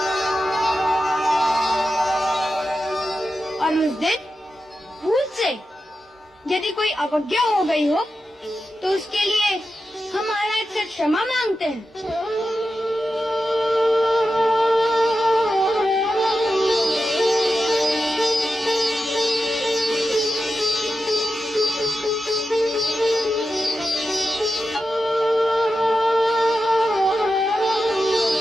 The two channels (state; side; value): normal; both; correlation 0.91